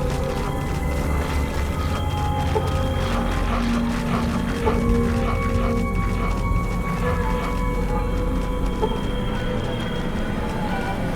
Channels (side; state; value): both; identical; correlation 1.00